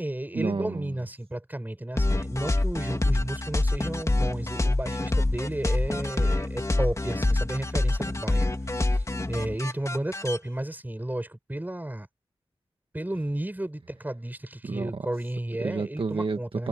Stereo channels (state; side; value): normal; both; correlation 0.93